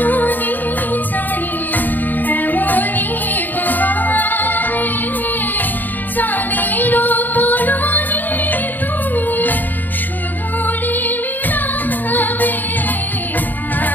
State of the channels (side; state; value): right; late; 0.088 ms